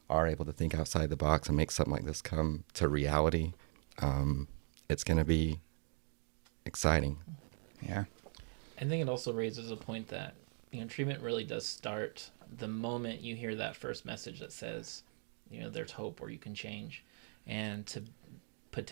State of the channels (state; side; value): silent; left; 52 dB below the other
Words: are able to think outside the box and make something like this come to reality. It's going to be exciting. Yeah. I think it also raises a point that, treatment really does start the moment you hear that first message that says, there's hope or you can change. And to